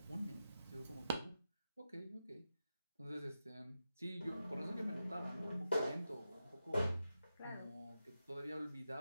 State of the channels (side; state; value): both; inverted; correlation -0.90